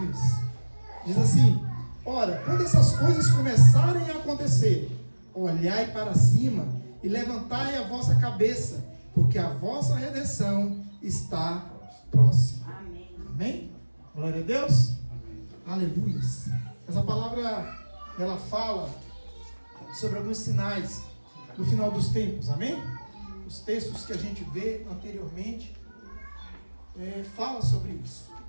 Diz assim: ora, quando essas coisas começarem a acontecer, olhai para cima e levantai a vossa cabeça, porque a vossa redenção está próxima. Amém. Amém? Glória a Deus. Aleluia. Essa palavra, ela fala sobre alguns sinais no final dos tempos, amém? Os textos que a gente vê anteriormente fala sobre isso,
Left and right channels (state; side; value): inverted; both; correlation -1.00